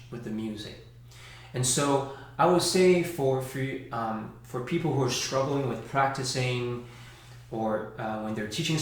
with the music. And so I would say for people who are struggling with practicing, or when they're teaching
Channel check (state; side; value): identical; both; correlation 1.00